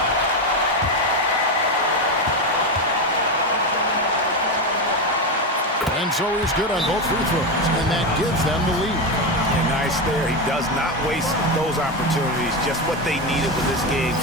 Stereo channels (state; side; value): normal; both; correlation 0.13